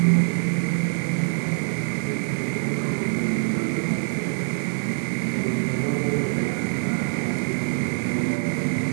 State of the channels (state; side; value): silent; left; digital silence